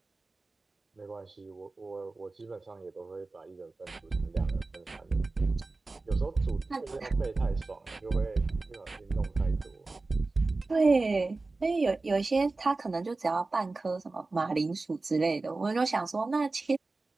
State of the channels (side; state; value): left; quieter; 3.5 dB